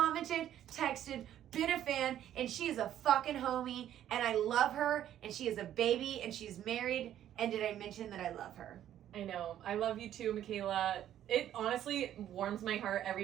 texted, been a fan, and she is a fucking homie, and I love her, and she is a baby, and she's married, and did I mention that I love her? I know. I love you too, Michaela. It honestly warms my heart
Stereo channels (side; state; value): left; quieter; 11.3 dB